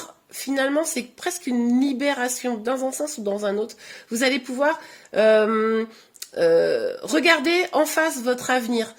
finalement, c'est presque une libération dans un sens ou dans un autre. Vous allez pouvoir regarder en face votre avenir,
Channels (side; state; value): both; identical; correlation 1.00